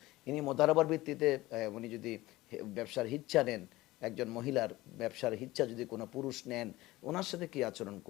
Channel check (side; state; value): right; quieter; 18.5 dB